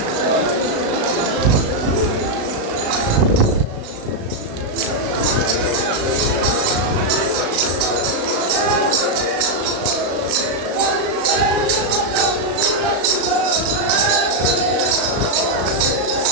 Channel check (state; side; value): late; left; 36 ms